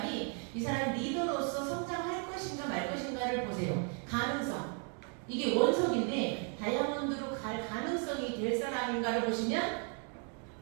이 사람 리더로서 성장할 것인가 말 것인가를 보세요. 가능성. 이게 원석인데 다이아몬드로 갈 가능성이 될 사람인가를 보시면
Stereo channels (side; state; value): left; quieter; 38.4 dB